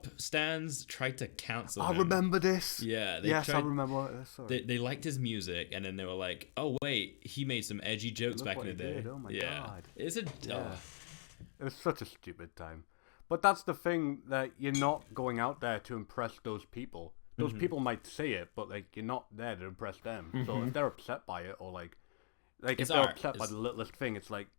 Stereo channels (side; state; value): right; silent; digital silence